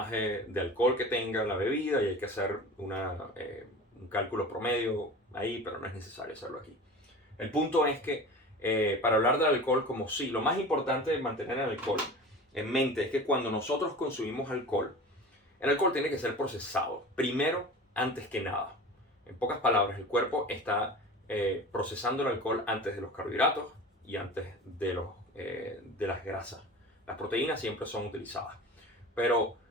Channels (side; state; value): both; normal; correlation 0.36